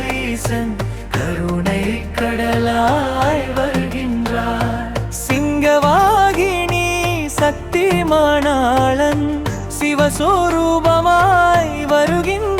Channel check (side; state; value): both; identical; correlation 1.00